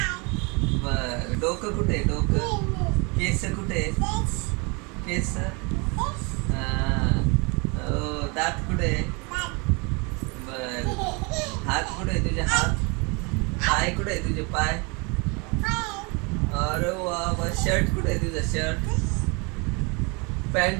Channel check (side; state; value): left; quieter; 30.3 dB